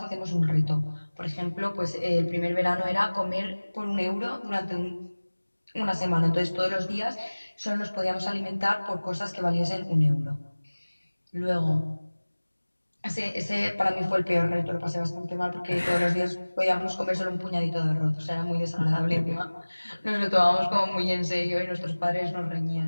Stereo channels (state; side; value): inverted; both; correlation -1.00